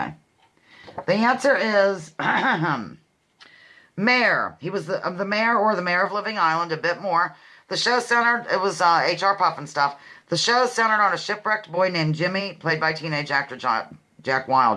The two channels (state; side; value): identical; both; correlation 1.00